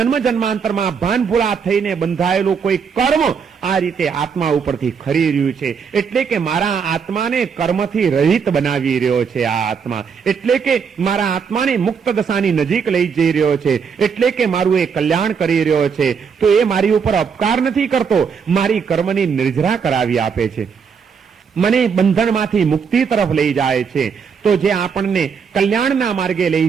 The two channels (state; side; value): quieter; left; 6.3 dB